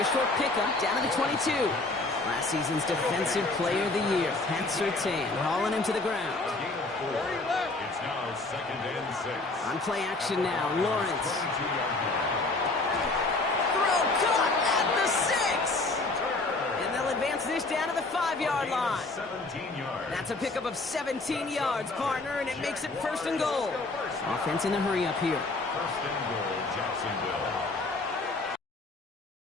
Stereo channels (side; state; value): right; quieter; 3.2 dB